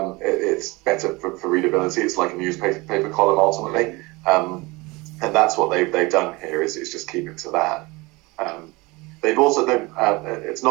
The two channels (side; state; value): left; quieter; 23.9 dB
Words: better for readability. It's like a newspaper column ultimately, and that's what they've done here. Is just keep it to that. They've also it's